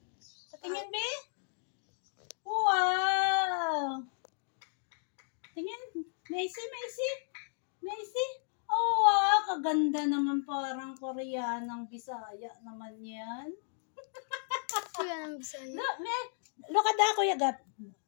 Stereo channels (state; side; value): silent; right; digital silence